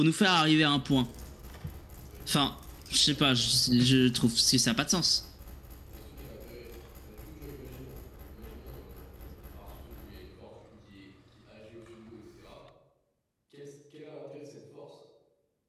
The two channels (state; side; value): identical; both; correlation 1.00